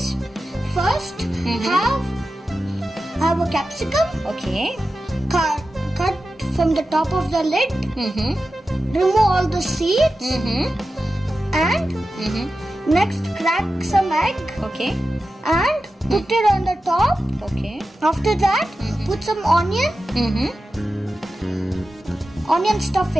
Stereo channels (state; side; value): normal; both; correlation 0.93